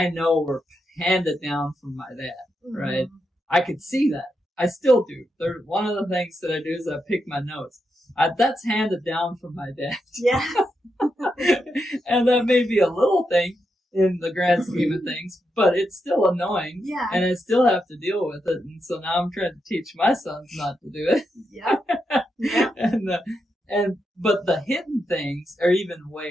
know were handed down from my dad, right? I could see that. I still do. One of the things that I do is I pick my nose. That's handed down from my dad. Yeah. And that may be a little thing in the grand scheme of things, but it's still annoying. Yeah. And I still have to deal with it. And so now I'm trying to teach my sons not to do it. Yeah. Yeah. But the hidden things are even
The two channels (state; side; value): normal; both; correlation 0.84